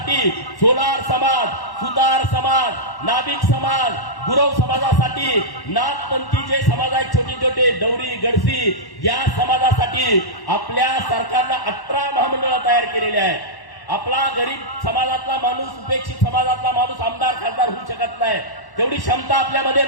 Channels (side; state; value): right; late; 1.1 ms